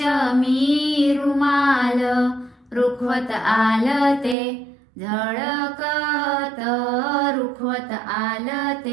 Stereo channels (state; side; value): drops out; left; at 4.4 s